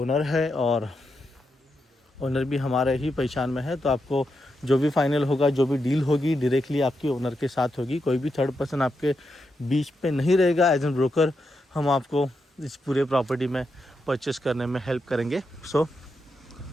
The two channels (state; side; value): normal; both; correlation 0.84